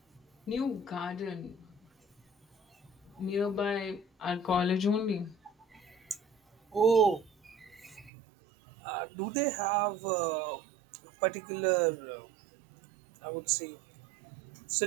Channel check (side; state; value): left; drops out; at 8.1 s